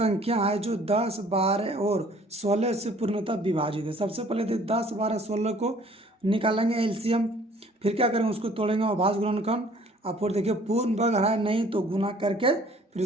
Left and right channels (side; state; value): both; normal; correlation 0.55